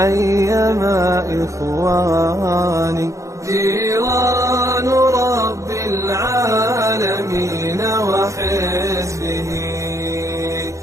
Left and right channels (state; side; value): late; left; 0.15 ms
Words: إخواني. جيران رب العالمين وحزبه